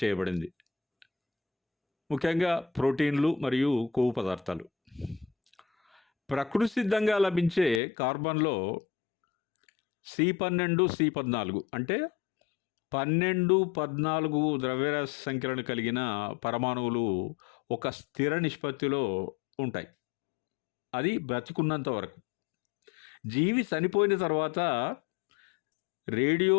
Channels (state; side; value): drops out; right; at 7.8 s